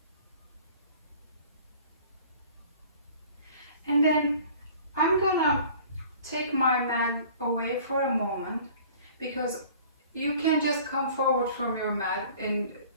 And then I'm gonna take my mat away for a moment, because you can just come forward from your mat and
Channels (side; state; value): both; inverted; correlation -0.48